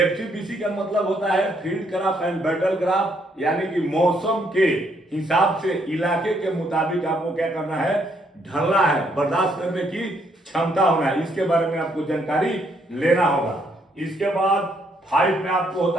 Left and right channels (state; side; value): normal; both; correlation 0.71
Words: का मतलब होता है field craft and battle craft यानी कि मौसम के हिसाब से इलाके के मुताबिक आपको क्या करना है, ढलना है, बर्दाश्त करने की क्षमता होना है। इसके बारे में आपको जानकारी लेना होगा। इसके बाद 5 में आपको